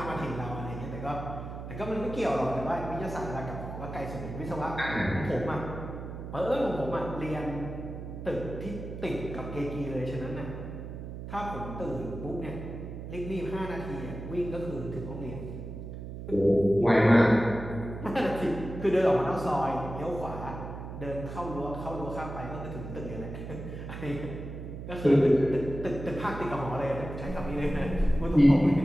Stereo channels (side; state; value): right; noise; hum, 9 dB below the sound